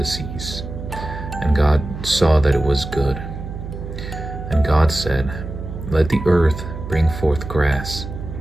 seas. And God saw that it was good. And God said, "Let the earth bring forth grass,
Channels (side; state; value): right; noise; hum, 9 dB below the sound